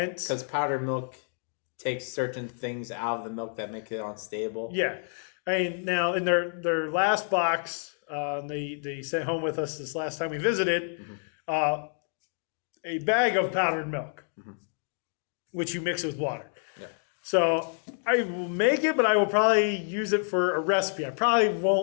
Because powdered milk takes certain things out of the milk that make it unstable. Yeah. I mean, now in their last box, they sent home with us this last time we visited, a bag of powdered milk, which you mix with water. Yeah. So I will make it, but I will probably use it for a recipe. I probably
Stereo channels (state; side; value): silent; right; 59 dB below the other